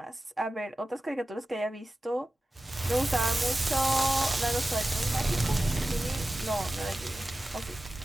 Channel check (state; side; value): normal; both; correlation 0.94